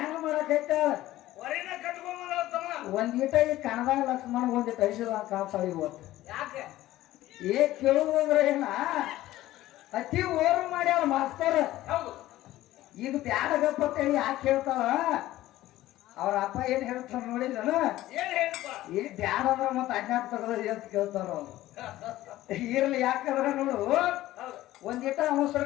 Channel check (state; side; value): quieter; right; 15.5 dB